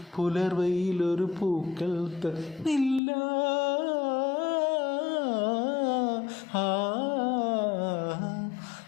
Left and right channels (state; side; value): drops out; right; at 3.0 s